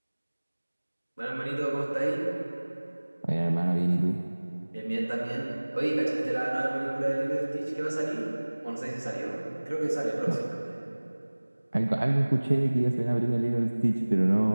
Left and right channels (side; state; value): both; inverted; correlation -1.00